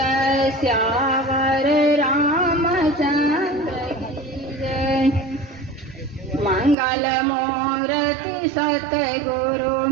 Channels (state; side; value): drops out; left; at 6.8 s